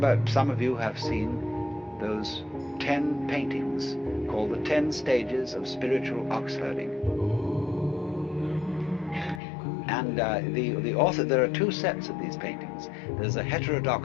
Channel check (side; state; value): right; drops out; at 9.4 s